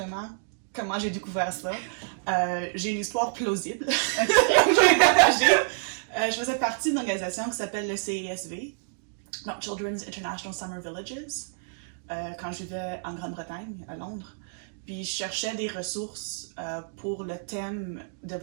comment j'ai découvert ça. J'ai une histoire plausible. Je faisais partie d'une organisation qui s'appelle le CISV, donc Children's International Summer Villages, quand je vivais en Grande-Bretagne, à Londres. Puis je cherchais des ressources pour le thème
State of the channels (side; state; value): left; silent; digital silence